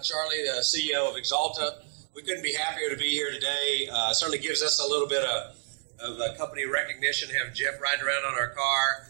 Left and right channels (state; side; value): silent; left; digital silence